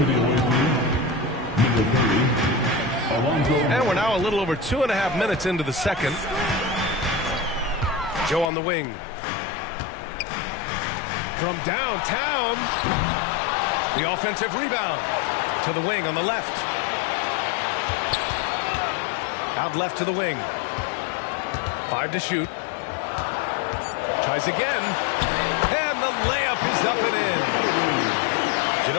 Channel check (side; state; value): right; drops out; at 8.5 s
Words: And we're now a little over 2.5 minutes into the second. Joe on the wing. From downtown, the offensive rebound to the wing on the left. Out left to the wing. 5 to shoot. Tries again. And the layup is up and in.